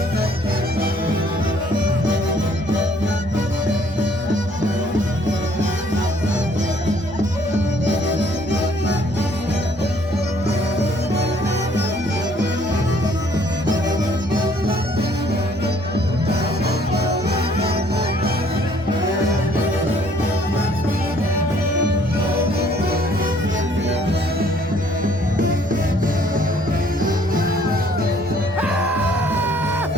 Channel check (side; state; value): both; normal; correlation 0.61